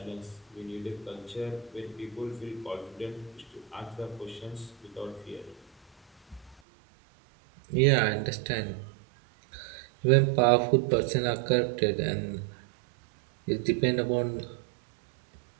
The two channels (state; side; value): drops out; left; at 6.6 s